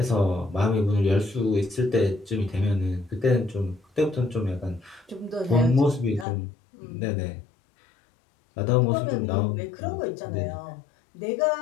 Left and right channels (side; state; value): right; drops out; at 6.2 s